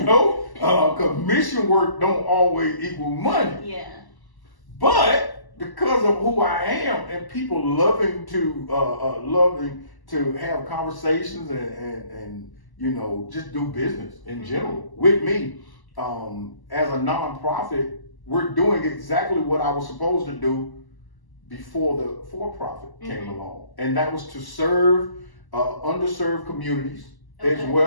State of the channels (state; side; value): late; right; 1.1 ms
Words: because mission work don't always equal money. Yeah. But because of who I am and people loving to have conversations and you know, just do business in general with me, as a nonprofit, we're doing exactly what I was supposed to do before the for-profit came along, and that was to serve underserved communities, as